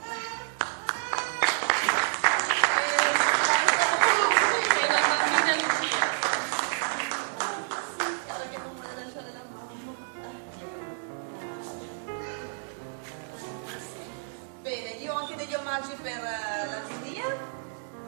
Bene, io ho anche degli omaggi per la giuria.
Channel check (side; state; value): left; silent; digital silence